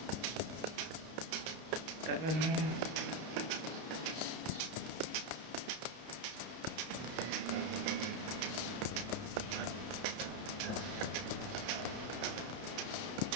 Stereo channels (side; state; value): left; late; 32 ms